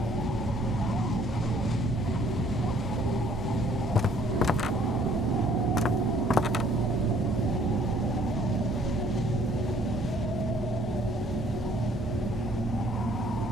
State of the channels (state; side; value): normal; both; correlation 0.60